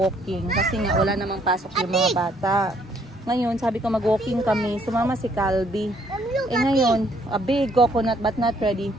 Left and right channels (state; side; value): normal; both; correlation 0.66